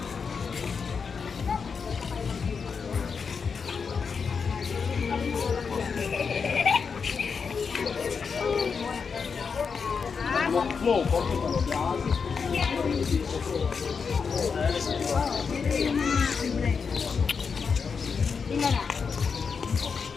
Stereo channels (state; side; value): quieter; right; 5.7 dB